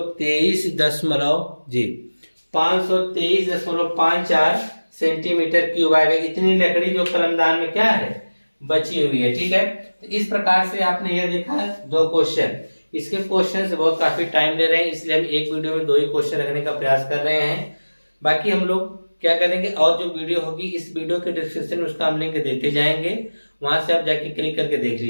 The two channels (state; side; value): inverted; both; correlation -1.00